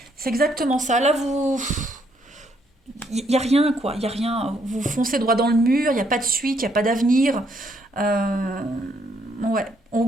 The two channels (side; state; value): both; normal; correlation 0.71